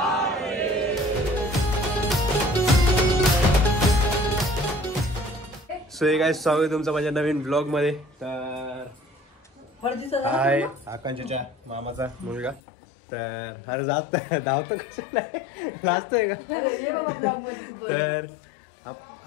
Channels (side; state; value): right; drops out; at 12.6 s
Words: सो हे काय स्वागत आहे तुमचं माझ्या नवीन ब्लॉग मध्ये. तर हाय आकांक्षाच्या मामाचा मुलगा. तर अरे जात धावतो कशाला लाजतोय का. तर